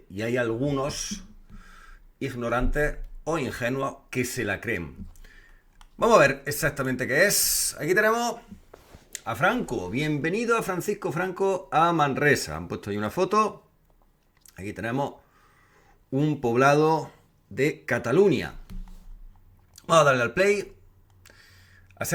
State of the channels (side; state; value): both; identical; correlation 1.00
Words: Y hay algunos ignorantes o ingenuos que se la creen. Vamos a ver exactamente qué es. Aquí tenemos a Franco. Bienvenido a Francisco Franco a Manresa. Han puesto ahí una foto. Aquí tenemos un poblado de Cataluña. Vamos a darle al play.